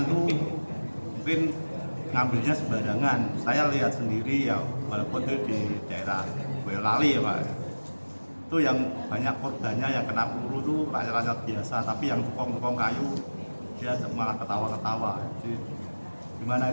tuh mungkin ngambilnya sembarangan. Saya lihat sendiri ya, walaupun itu di daerah Boyolali ya Pak. Itu yang banyak korbannya yang kena peluru tuh rakyat-rakyat biasa, tapi yang tukang-tukang kayu dia malah ketawa-ketawa. Jadi gimana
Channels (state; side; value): inverted; both; correlation -1.00